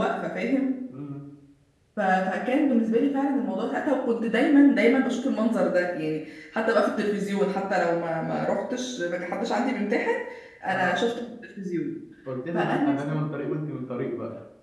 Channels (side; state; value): both; identical; correlation 1.00